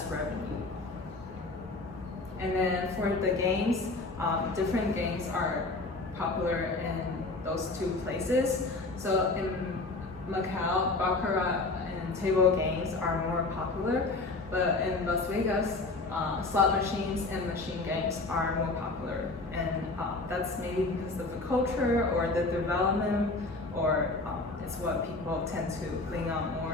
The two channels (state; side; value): quieter; right; 3.3 dB